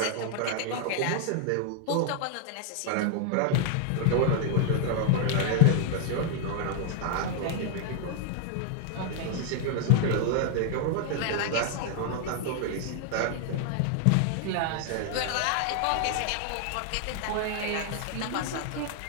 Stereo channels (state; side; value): different; both; correlation 0.00